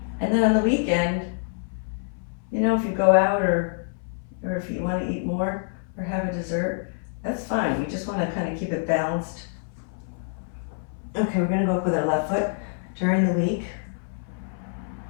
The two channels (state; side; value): silent; right; 60 dB below the other